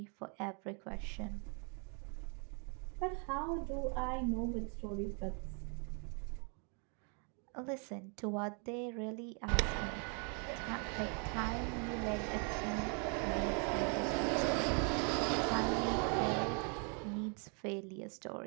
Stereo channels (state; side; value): quieter; left; 38.1 dB